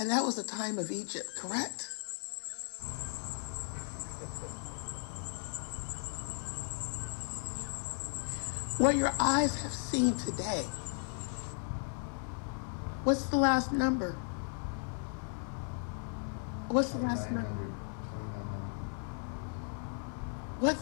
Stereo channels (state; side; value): silent; right; 54 dB below the other